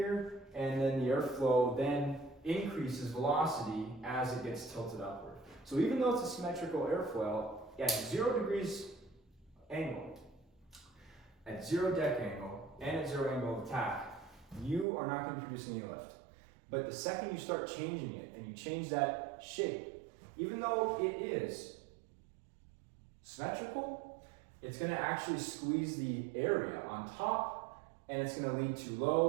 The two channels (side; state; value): left; drops out; at 14.9 s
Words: and then the airflow then increases velocity as it gets tilted upward. So even though it's a symmetrical airfoil, at 0 degrees angle, at 0 deck angle, and at 0 angle of attack, you are not going to produce any lift. But the second you start changing it and you change that shape, even though it is symmetrical, it's going to actually squeeze the area on top, and it's going to lead to